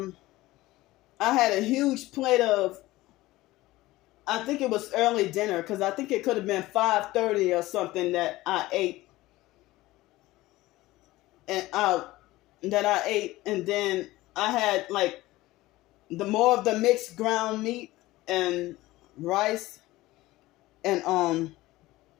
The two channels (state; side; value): quieter; right; 18.1 dB